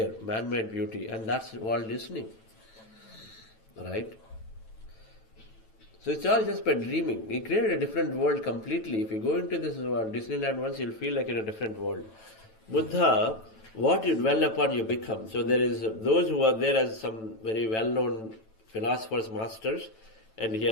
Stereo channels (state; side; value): late; right; 9.1 ms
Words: man-made beauty, and that's Walt Disney, right? So it's all just by dreaming. He created a different world completely. If you go into this Disneyland once, you'll feel like in a different world. Buddha, what you dwell upon, you become. So there is those who are there as some very well-known philosophers, masters, and